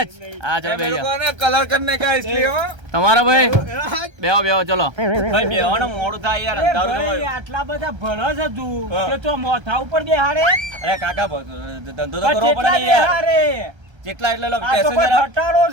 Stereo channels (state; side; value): late; left; 1.3 ms